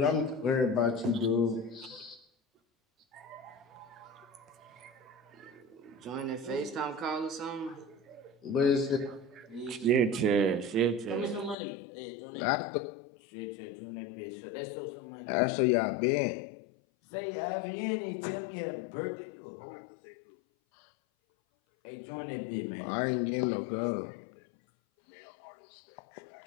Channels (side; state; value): right; drops out; at 11.6 s